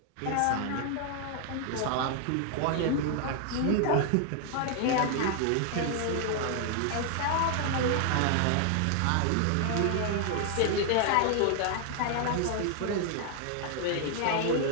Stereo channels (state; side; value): different; both; correlation 0.00